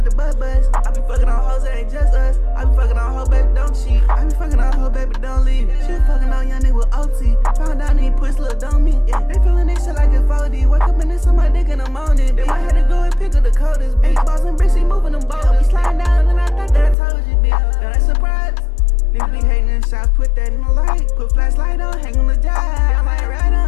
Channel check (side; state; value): right; drops out; at 16.9 s